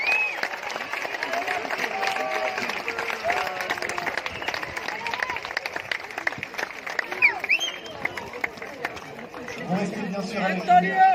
Vous restez bien sûr avec nous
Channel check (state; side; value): identical; both; correlation 1.00